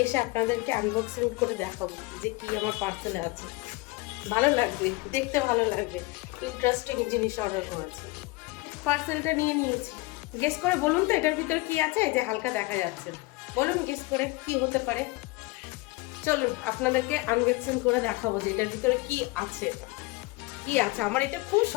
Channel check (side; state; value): right; quieter; 22.9 dB